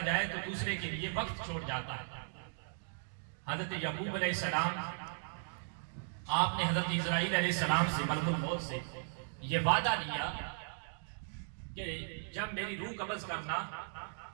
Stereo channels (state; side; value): silent; left; digital silence